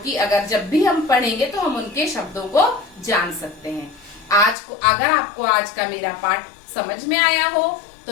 जब भी हम पढ़ेंगे तो हम उनके शब्दों को जान सकते हैं। अगर आपको आज का मेरा पाठ समझ में आया हो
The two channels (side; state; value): right; drops out; at 4.5 s